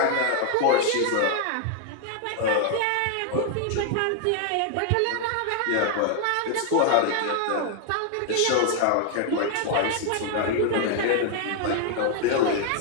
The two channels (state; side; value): different; both; correlation 0.00